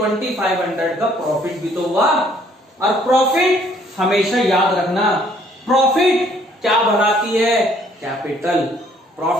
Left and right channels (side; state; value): both; normal; correlation 0.62